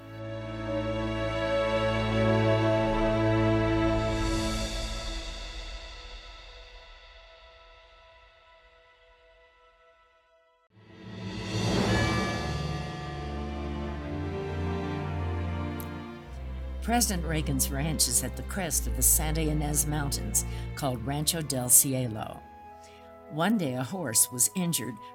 President Reagan's ranch is at the crest of the Santa Ynez Mountains, called Rancho del Cielo. One day a horse was injured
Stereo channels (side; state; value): both; identical; correlation 1.00